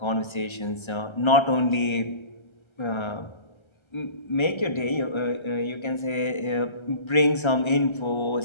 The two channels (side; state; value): right; late; 1.3 ms